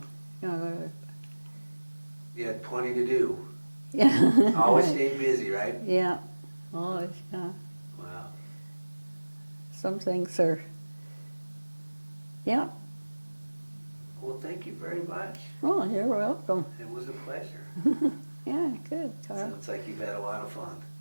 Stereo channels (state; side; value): inverted; both; correlation -1.00